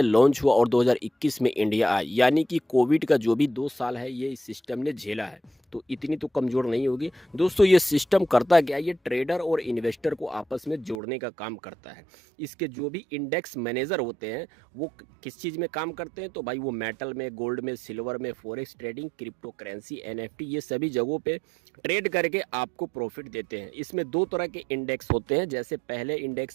लॉन्च हुआ और 2021 में इंडिया आया, यानी कि कोविड का जो भी 2 साल है ये इस सिस्टम ने झेला है, तो इतनी तो कमज़ोर नहीं होगी। दोस्तों, ये सिस्टम करता क्या है, ये ट्रेडर और इन्वेस्टर को आपस में जोड़ने का काम करता है। इसके जो भी इंडेक्स मैनेजर होते हैं वो किस चीज़ में काम करते हैं, तो भाई वो मेटल में, गोल्ड में, सिल्वर में, forex trading, crypto currency, NFT, ये सभी जगहों पे ट्रेड करके आपको प्रॉफिट देते हैं। इसमें 2 तरह के इंडेक्स होते हैं, जैसे पहले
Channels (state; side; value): drops out; left; at 11.0 s